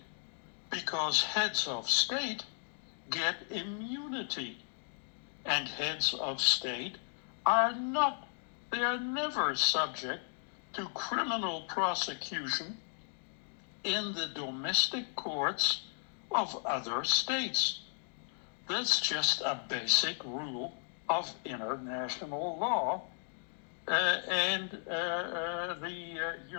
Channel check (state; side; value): silent; right; 54 dB below the other